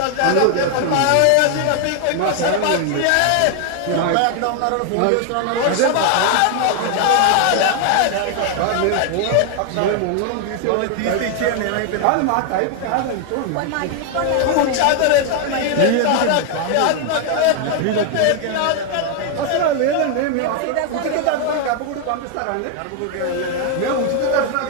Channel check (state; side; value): different; both; correlation 0.00